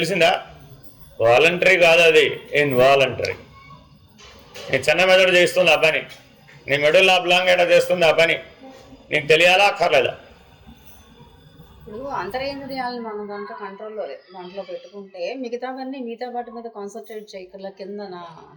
వాలంటరీ కాదు, అది ఇన్వాలంటరీ. నీ చిన్న మెదడు చేస్తుంది ఆ పని, నీ మెడల్ ఆబ్లాంగేట చేస్తుంది ఆ పని, నీకు తెలియాలా అక్కర్లేదా? ఇప్పుడు అంతరేంద్రియాలను మనం దాంట్లో పెట్టుకుంటే మిగతా వాటి మీద కాన్సన్ట్రేట్ చేయగల కింద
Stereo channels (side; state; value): both; identical; correlation 1.00